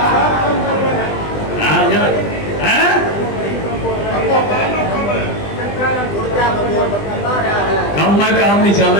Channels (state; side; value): late; right; 20 ms